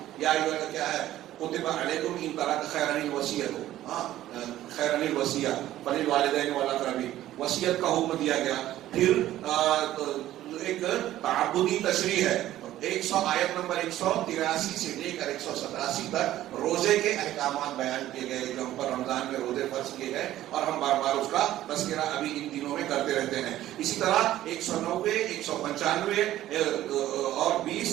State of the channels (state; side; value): quieter; left; 13.8 dB